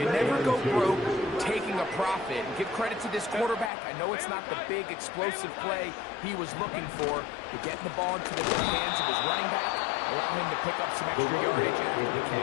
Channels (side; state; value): right; drops out; at 3.7 s